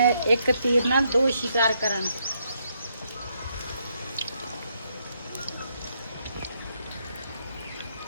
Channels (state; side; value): inverted; both; correlation -0.76